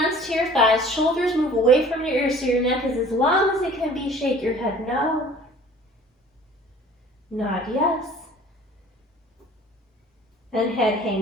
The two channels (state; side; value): normal; both; correlation 0.49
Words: to your thighs, shoulders move away from your ears so your neck is as long as it can be. Shake your head no. Nod yes. And head